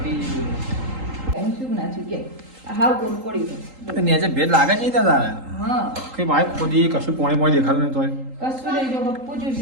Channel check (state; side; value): late; left; 3.8 ms